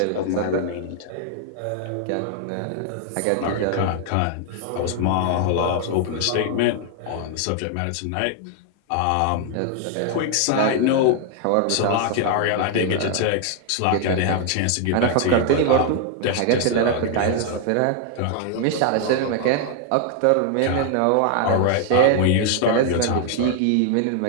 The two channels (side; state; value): both; different; correlation 0.00